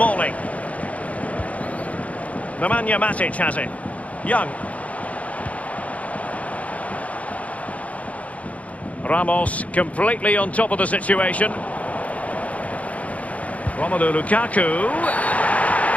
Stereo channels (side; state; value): right; late; 0.067 ms